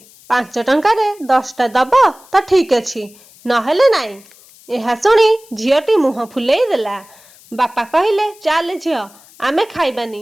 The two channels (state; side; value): noise; left; hiss, 25 dB below the sound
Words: 5 ଟଙ୍କାରେ 10ଟା ଦବ ତ ଠିକ୍ ଅଛି, ନହେଲେ ନାଇଁ। ଏହା ଶୁଣି ଝିଅଟି ମୁହଁ ଫୁଲେଇ ଦେଲା। ବାପା କହିଲେ, ଚାଲେ ଝିଅ, ଆମେ ଖାଇବାନି,